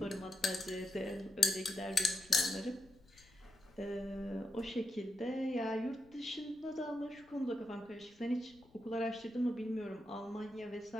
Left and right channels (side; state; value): left; noise; rumble, 28 dB below the sound